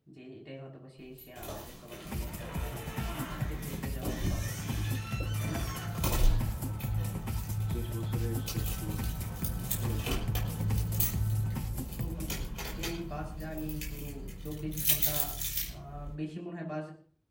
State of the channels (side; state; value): both; identical; correlation 1.00